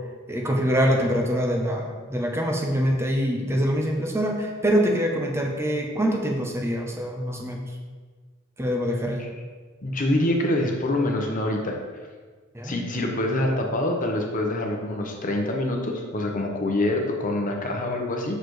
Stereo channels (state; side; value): normal; both; correlation 0.63